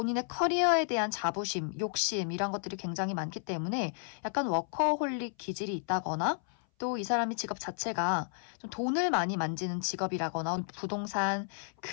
커리어에 대한 자부심, 욕심 이런 것들이 굉장히 많기 때문에 약간 워커홀릭 기질이 있다거나, 또 이 사람의 직업 자체가 좀 돈을 많이 만지는 직업이라거나 부동산,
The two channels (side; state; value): right; silent; 56 dB below the other